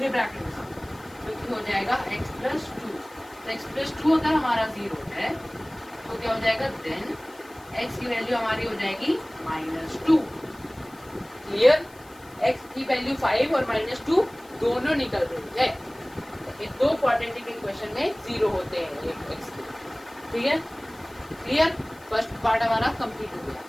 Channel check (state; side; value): noise; left; hiss, 25 dB below the sound